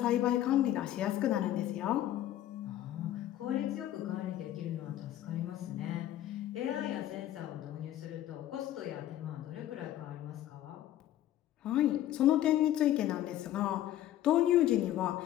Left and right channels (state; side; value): quieter; right; 12.9 dB